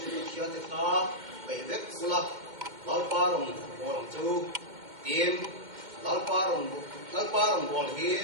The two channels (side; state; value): left; late; 2.1 ms